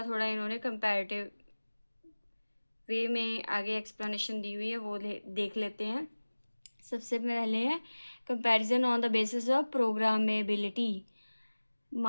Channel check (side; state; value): both; inverted; correlation -1.00